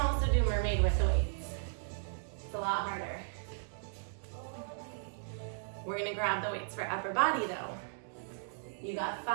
do mermaid with the weights. It's a lot harder. We're gonna grab the weights for upper body though. You got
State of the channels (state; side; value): silent; left; digital silence